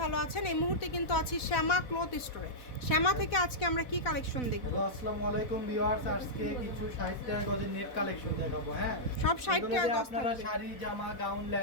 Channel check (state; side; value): late; right; 4.1 ms